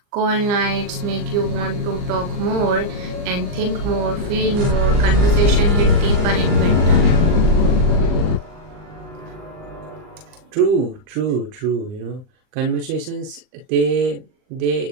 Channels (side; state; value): left; late; 39 ms